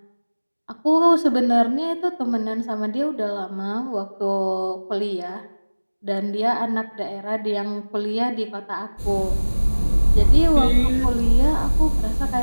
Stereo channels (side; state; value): both; inverted; correlation -1.00